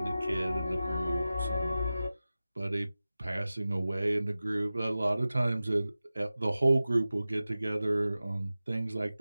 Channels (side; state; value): both; inverted; correlation -0.96